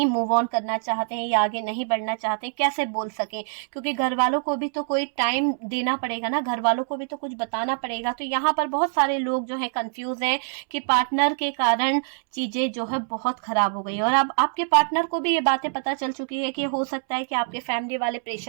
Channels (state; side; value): silent; left; 62 dB below the other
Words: मूव ऑन करना चाहते हैं या आगे नहीं बढ़ना चाहते हैं, कैसे बोल सके? क्योंकि घर वालों को भी तो कोई टाइम देना पड़ेगा ना, घर वालों को भी तो कुछ बताना पड़ेगा। तो यहाँ पर बहुत सारे लोग जो है कंफ्यूज हैं कि पार्टनर के कारण चीजें जो है बहुत खराब हो गई। और अब आपके पार्टनर को भी ये बातें पता चल चुकी है कि हो सकता है कि आपके फैमिली वाले